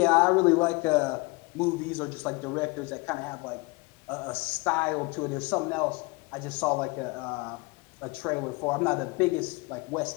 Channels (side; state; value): right; quieter; 26.3 dB